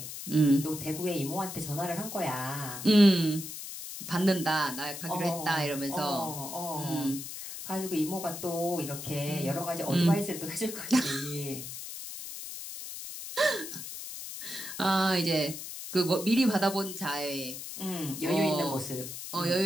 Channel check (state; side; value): noise; left; hiss, 9 dB below the sound